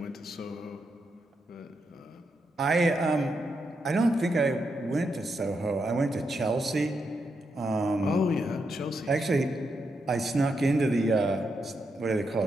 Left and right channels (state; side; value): normal; both; correlation 0.83